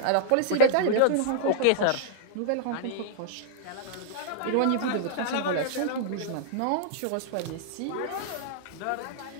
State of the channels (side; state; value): both; different; correlation -0.01